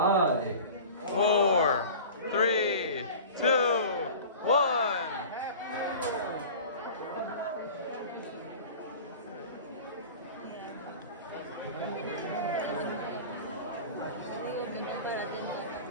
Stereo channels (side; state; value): both; inverted; correlation -0.38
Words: 4, 3, 2, 1.